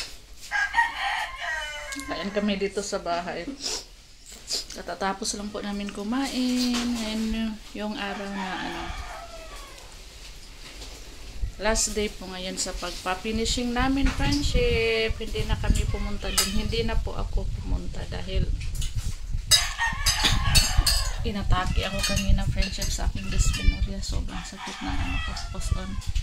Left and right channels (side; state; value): both; identical; correlation 1.00